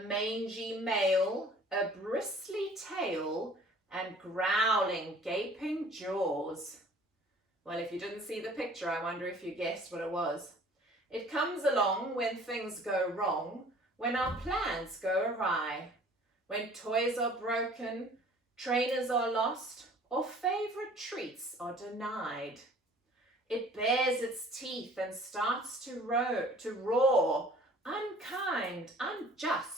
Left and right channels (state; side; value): normal; both; correlation 0.51